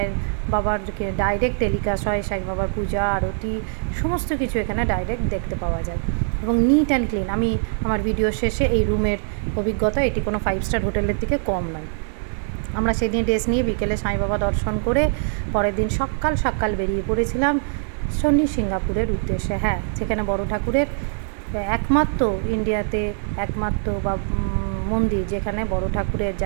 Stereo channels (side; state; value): left; silent; 64 dB below the other